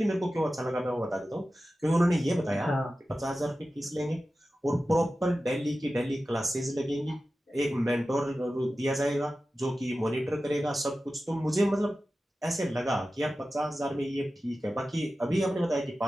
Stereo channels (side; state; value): both; normal; correlation 0.94